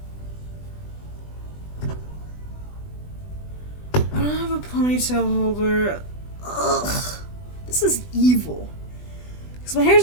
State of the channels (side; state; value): right; late; 20 ms